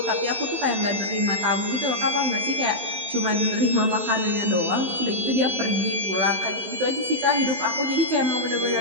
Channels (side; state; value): left; late; 16 ms